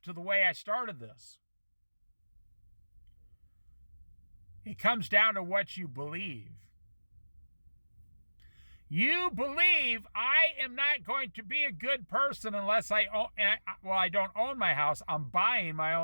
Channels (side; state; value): both; inverted; correlation -1.00